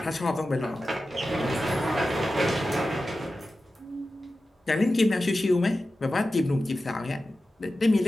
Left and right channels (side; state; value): both; normal; correlation 0.93